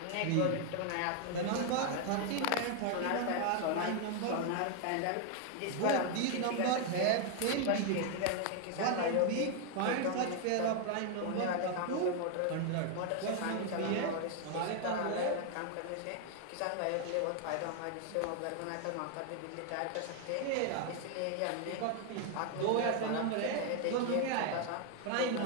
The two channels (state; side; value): different; both; correlation 0.00